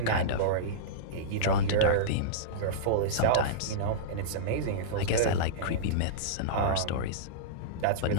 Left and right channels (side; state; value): both; different; correlation -0.04